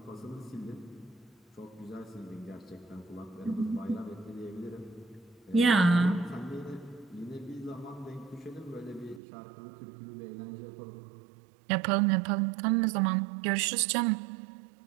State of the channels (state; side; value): drops out; left; at 9.2 s